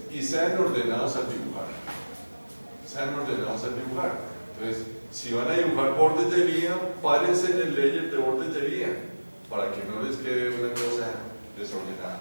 y sean ordenados al dibujar. Sean ordenados al dibujar. Entonces, si van a dibujar bordes de vía, párense en el layer de bordes de vía, para que no les quede una cosa desordenada.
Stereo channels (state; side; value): inverted; both; correlation -1.00